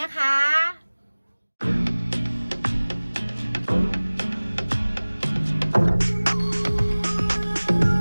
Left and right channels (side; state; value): both; inverted; correlation -1.00